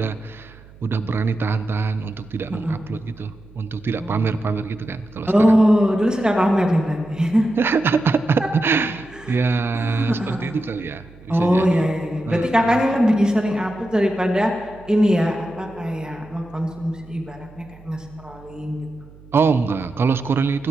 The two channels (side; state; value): right; noise; hum, 22 dB below the sound